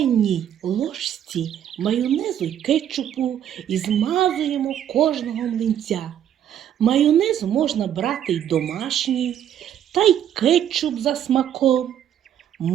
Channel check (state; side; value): quieter; left; 10.1 dB